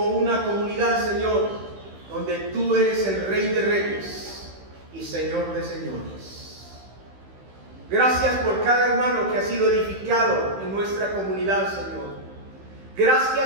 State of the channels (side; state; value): left; late; 15 ms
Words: una comunidad, Señor, donde tú eres el Rey de Reyes y Señor de Señores. Gracias por cada hermano que ha sido edificado en nuestra comunidad, Señor.